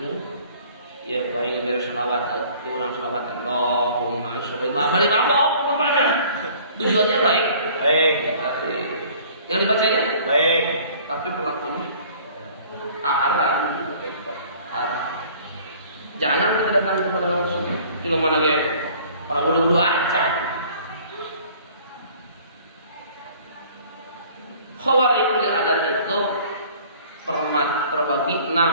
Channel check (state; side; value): inverted; both; correlation -0.52